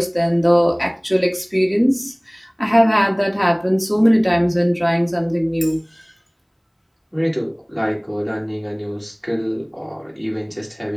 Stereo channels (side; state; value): both; identical; correlation 1.00